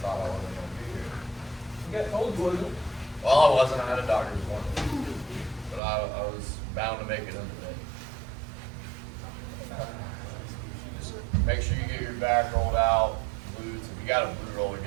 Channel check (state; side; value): drops out; left; at 5.8 s